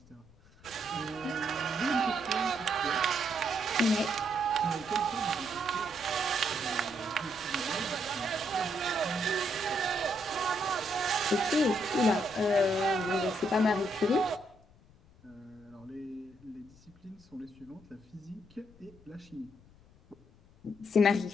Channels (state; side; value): noise; left; rumble, 26 dB below the sound